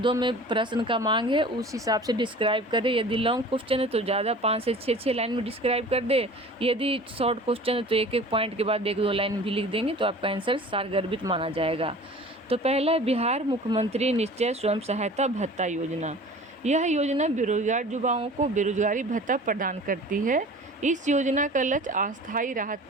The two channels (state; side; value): normal; both; correlation 0.42